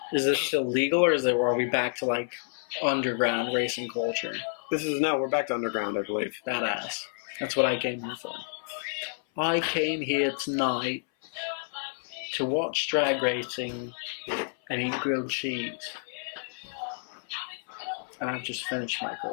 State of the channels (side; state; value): right; silent; 57 dB below the other